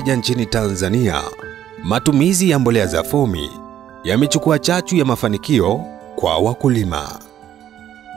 nchini Tanzania, matumizi ya mbolea za fomi yamechukua chachu ya mafanikio kwa wakulima.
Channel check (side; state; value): left; quieter; 10.8 dB